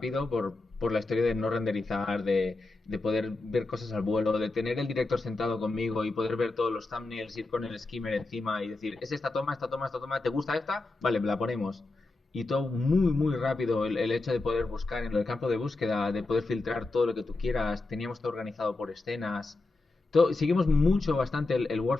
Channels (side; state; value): right; quieter; 3.2 dB